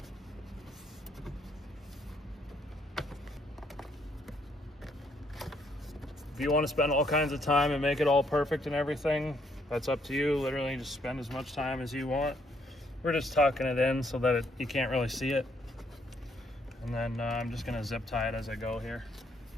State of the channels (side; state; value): both; normal; correlation 0.70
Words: If you want to spend all kinds of time and make it all perfect and everything, that's up to you. Literally just spend as much time as you want. We're just tucking it in so that you can't really see it. And then I'm just gonna zip tie it as I go here.